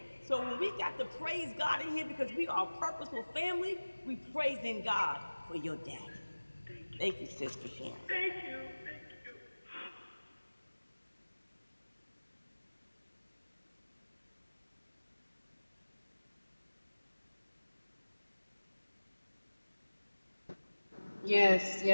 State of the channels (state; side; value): inverted; both; correlation -1.00